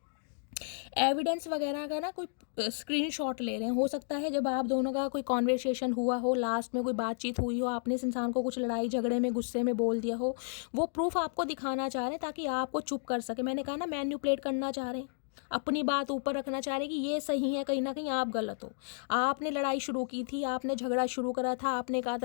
एविडेंस वगैरह का ना कोई स्क्रीनशॉट ले रहे हैं। हो सकता है जब आप दोनों का कोई कॉन्वर्सेशन हुआ हो, लास्ट में कोई बातचीत हुई हो, आपने इस इंसान को कुछ लड़ाई झगड़े में गुस्से में बोल दिया हो, वो प्रूफ आपको दिखाना चाह रहे हैं ताकि आपको चुप कर सके। मैंने कहा ना, मैन्युपुलेट करना चाह रहे हैं, अपनी बात ऊपर रखना चाह रहे हैं कि ये सही है, कहीं ना कहीं आप गलत हो। आपने लड़ाई शुरू की थी, आपने झगड़ा शुरू करा था, आपने कहा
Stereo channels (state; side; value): silent; right; digital silence